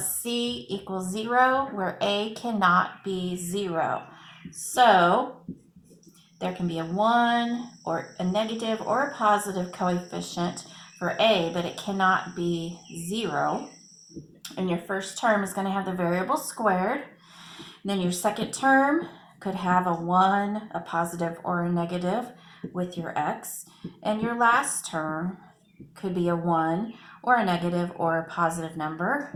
c equals 0, where a cannot be 0. So there can be a 1 or a negative or a positive coefficient for a, but it cannot be 0. And your first term is going to have the variable squared. And then your second term could have a 1, a positive, or a negative with your x. And your last term could be a 1 or a negative or a positive number.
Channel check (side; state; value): both; identical; correlation 1.00